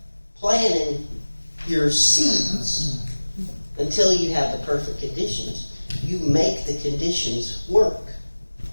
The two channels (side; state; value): both; inverted; correlation -1.00